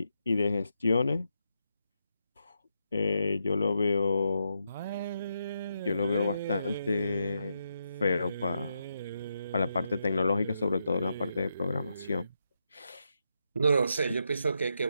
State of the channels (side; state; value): both; inverted; correlation -0.84